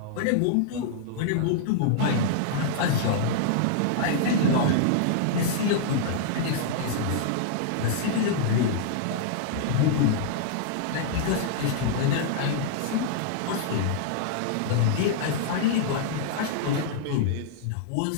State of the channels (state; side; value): different; both; correlation -0.02